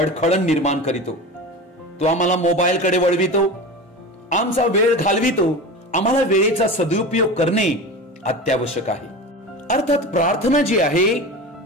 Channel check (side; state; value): both; normal; correlation 0.30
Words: निर्माण करीतो. तो आम्हाला मोबाईल कडे वळवितो, आमचा वेळ घालवितो. आम्हाला वेळेचा सदुपयोग करणे अत्यावश्यक आहे. अर्थात प्रार्थना जी आहे